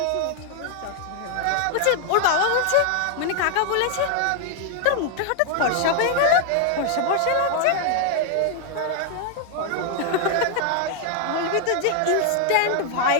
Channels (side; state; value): both; different; correlation 0.00